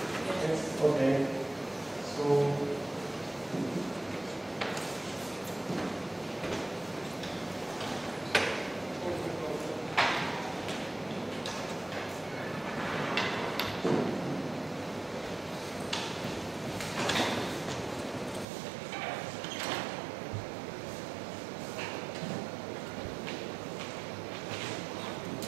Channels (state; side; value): drops out; left; at 18.4 s